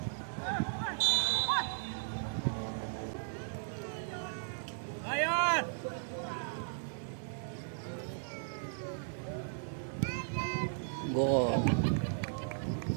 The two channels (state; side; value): silent; left; 54 dB below the other